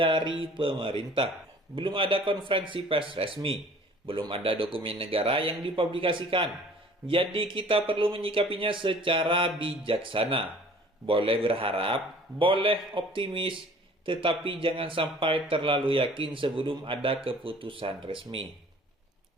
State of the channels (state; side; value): normal; both; correlation 0.50